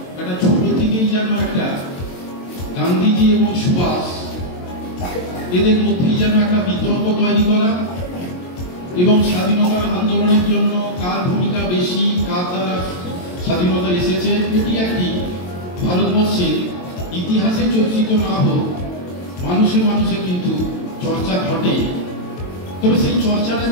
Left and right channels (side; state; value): right; late; 22 ms